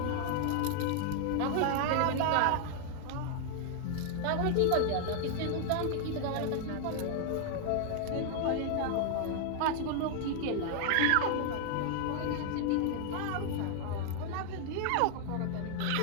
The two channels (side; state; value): both; different; correlation 0.00